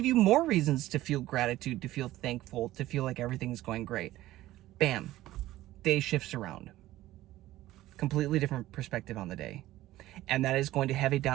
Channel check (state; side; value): quieter; left; 15.6 dB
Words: you more reasons to feel gratitude, to feel thankful, to feel like everything's going great. Bam. Day shifts around. Completely different perspective on the day. And that is going to have a